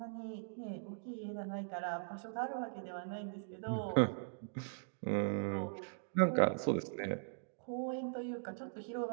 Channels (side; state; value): left; silent; digital silence